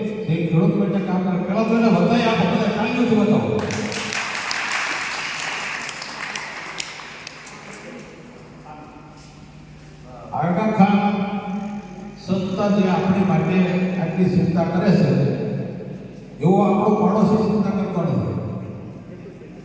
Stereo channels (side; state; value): both; identical; correlation 1.00